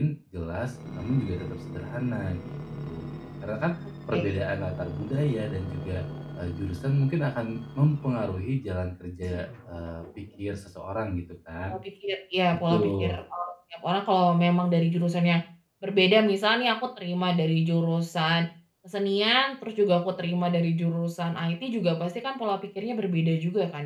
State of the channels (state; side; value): identical; both; correlation 1.00